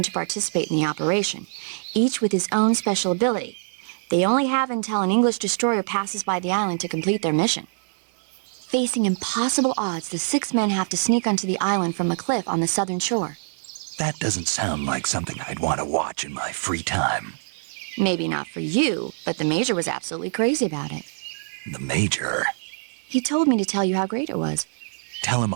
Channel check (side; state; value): left; silent; digital silence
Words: to participate in the operation, each with his own special ability. They only have until an English destroyer passes by the island to complete their mission. Facing impossible odds, the 6 men have to sneak onto the island from a cliff on the southern shore. That doesn't sound like something I'd want to watch in my free time. Maybe not for you, but the Major was absolutely crazy about it. The Major? He told me to tell you how great it was. Tell him